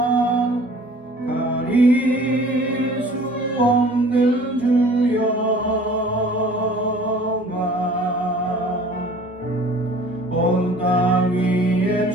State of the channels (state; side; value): normal; both; correlation 0.49